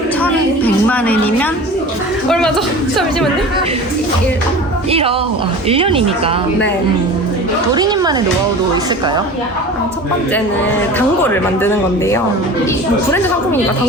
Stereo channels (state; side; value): normal; both; correlation 0.37